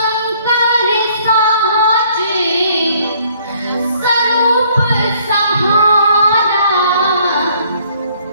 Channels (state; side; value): inverted; both; correlation -0.62